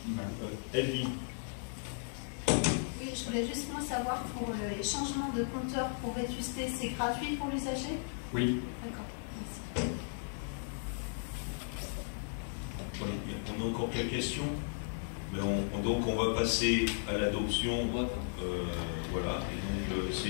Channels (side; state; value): right; silent; 54 dB below the other